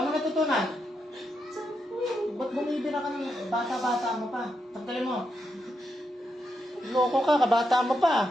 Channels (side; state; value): both; normal; correlation 0.83